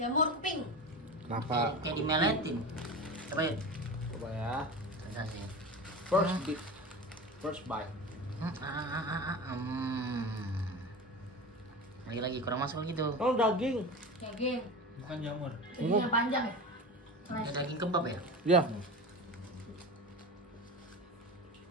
pink. Kenapa? kayak dimeletin. Coba ya. Coba ya. Rasanya. First bite. Lagi kurang masuk gitu. Oh, daging. Daging. Bukan jamur. Daginnya panjang ya? Ini daging kebab ya? Ya,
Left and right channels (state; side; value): normal; both; correlation 0.29